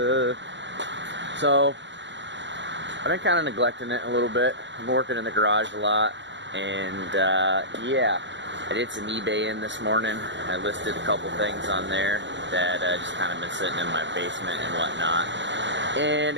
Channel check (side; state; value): left; late; 0.53 ms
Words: So I've been kind of neglecting it a little bit. I'm working in the garage a lot, and yeah, I did some eBay in this morning. I listed a couple things on there that just kind of been sitting in my basement and whatnot. And